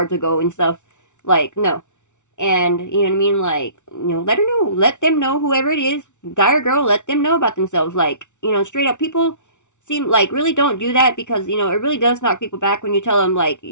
ago and stuff. Like, no. And you know what I mean? Like, let her know. Let them know, whoever it is, guy or girl, let them know about themselves. Like, straight up, people seem like really don't do that because, it really does knock people back when you tell them, like,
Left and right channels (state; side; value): late; right; 0.85 ms